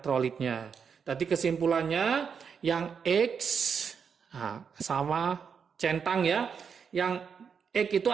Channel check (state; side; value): quieter; left; 6.5 dB